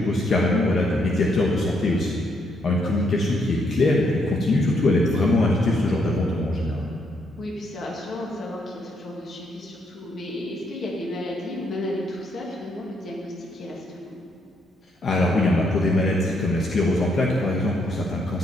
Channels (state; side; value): normal; both; correlation 0.74